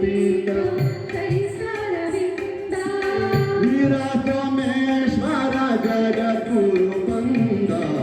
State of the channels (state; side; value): identical; both; correlation 1.00